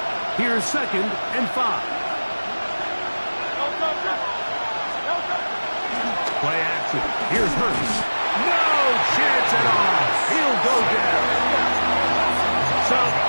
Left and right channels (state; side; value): inverted; both; correlation -1.00